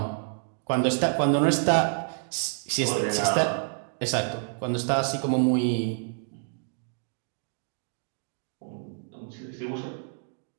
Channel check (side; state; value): left; silent; digital silence